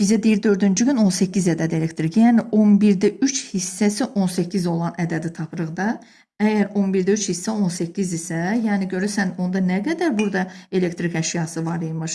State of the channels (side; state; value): both; identical; correlation 1.00